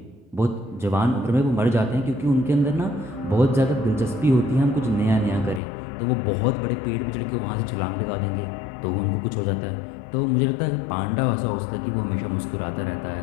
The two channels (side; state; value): right; drops out; at 5.6 s